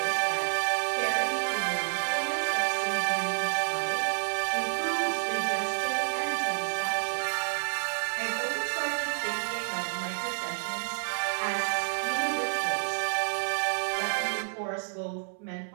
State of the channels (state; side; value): silent; left; 58 dB below the other